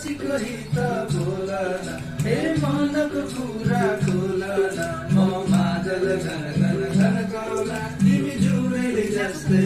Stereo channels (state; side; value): identical; both; correlation 1.00